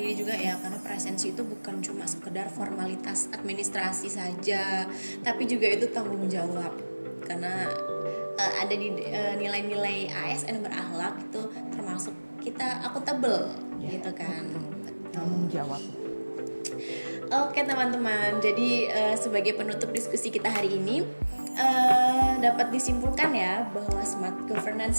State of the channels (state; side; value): inverted; both; correlation -1.00